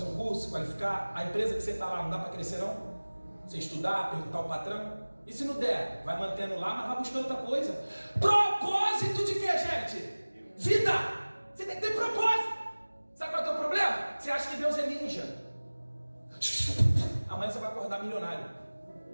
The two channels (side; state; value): both; inverted; correlation -1.00